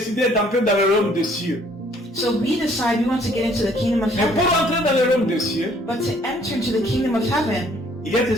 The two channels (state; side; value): normal; both; correlation 0.61